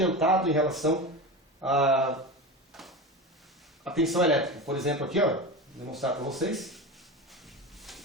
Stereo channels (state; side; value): normal; both; correlation 0.25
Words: em relação à tensão elétrica. Por exemplo, aqui, ó, vou demonstrar para vocês.